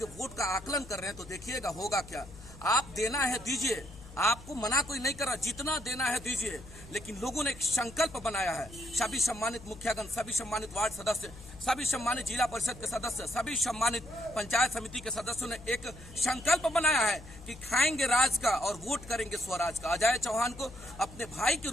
वोट का आकलन कर रहे हैं, तो देखिएगा होगा क्या। आप देना है दीजिए, आपको मना कोई नहीं कर रहा, जितना देना है दीजिए, लेकिन लोगों ने एक संकल्प बनाया है। सभी सम्मानित मुखियागण, सभी सम्मानित वार्ड सदस्य, सभी सम्मानित जिला परिषद के सदस्य, सभी सम्मानित पंचायत समिति के सदस्यों ने एक संकल्प बनाया है कि खाएंगे राज का और वोट करेंगे स्वराज का। अजय चौहान को अपने भाई के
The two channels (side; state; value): left; noise; hum, 17 dB below the sound